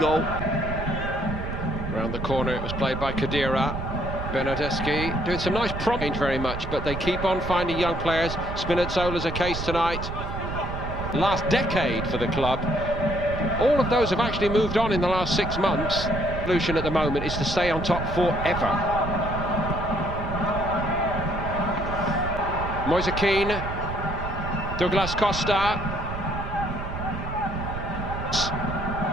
Round the corner, it was played by Khedira. Bernardeschi doing some nice prompt very much, but they keep on finding young players. Spinazzola's a case tonight. Last decade for the club. All of those have actually moved on in the last 6 months. The solution at the moment is to stay on top forever. Moise Keane, Douglas Costa.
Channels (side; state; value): right; noise; rumble, 6 dB below the sound